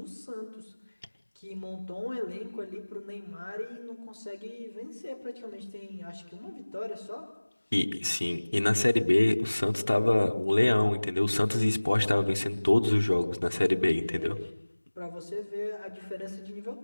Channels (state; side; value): inverted; both; correlation -1.00